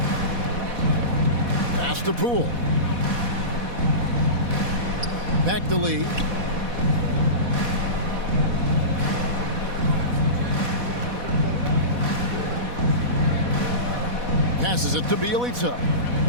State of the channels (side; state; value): left; late; 4.1 ms